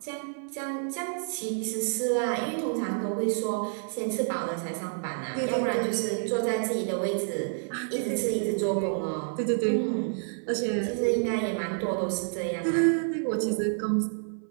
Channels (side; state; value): left; silent; 57 dB below the other